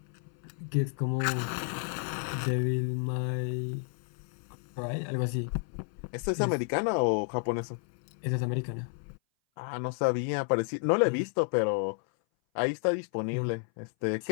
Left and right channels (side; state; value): right; silent; 57 dB below the other